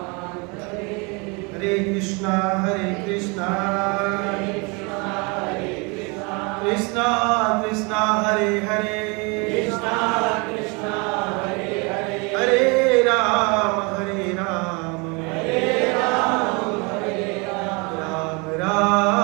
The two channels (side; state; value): left; quieter; 29.9 dB